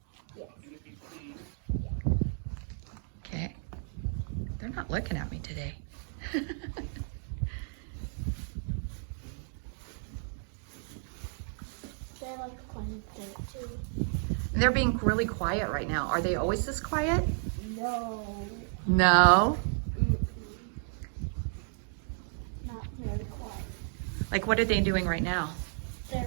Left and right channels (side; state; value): left; silent; 56 dB below the other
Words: Okay. They're not looking at me today. They like playing with it too. They're being really quiet right now. Are they always this quiet? No. No. Not very quiet. Like, what are they doing right now? They're